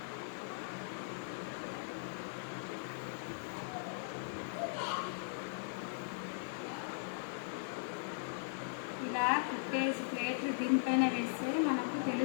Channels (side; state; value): right; silent; digital silence